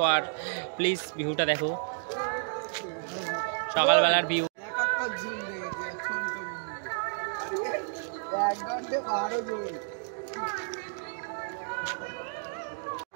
আর প্লিজ ভিউটা দেখো সকালবেলার ভিউ।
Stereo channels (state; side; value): silent; left; digital silence